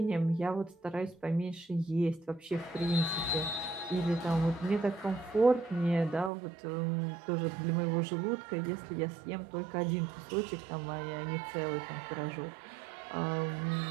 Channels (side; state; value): left; drops out; at 6.3 s